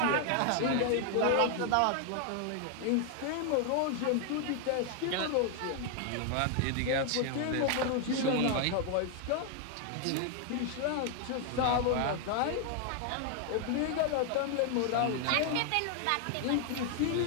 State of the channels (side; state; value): both; different; correlation 0.00